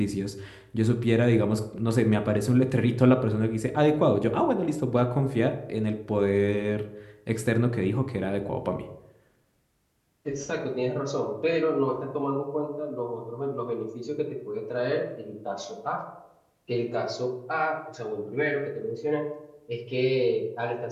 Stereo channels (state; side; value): identical; both; correlation 1.00